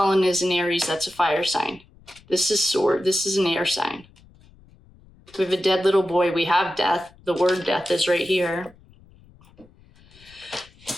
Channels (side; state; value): left; noise; rumble, 27 dB below the sound